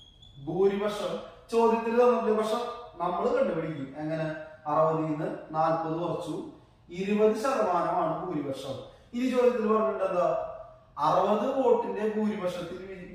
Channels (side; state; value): both; identical; correlation 1.00